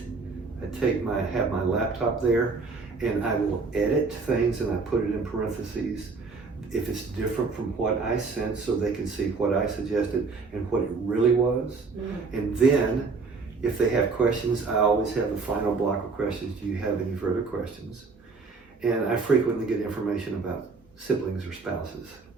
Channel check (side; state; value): left; quieter; 4.4 dB